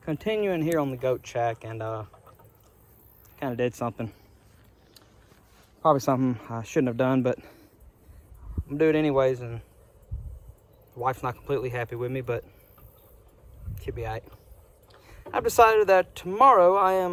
continuing here on the goat shack, and kind of did something, probably something I shouldn't have done, but I'm gonna do it anyways, and the wife's not completely happy with me, but she'll be all right. I've decided that tomorrow I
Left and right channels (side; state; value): both; identical; correlation 1.00